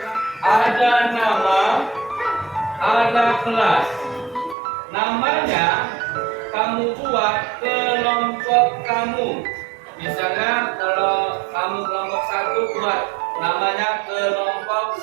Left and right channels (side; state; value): left; drops out; at 4.5 s